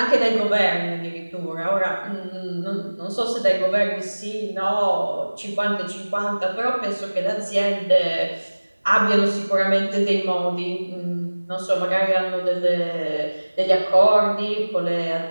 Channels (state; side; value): inverted; both; correlation -1.00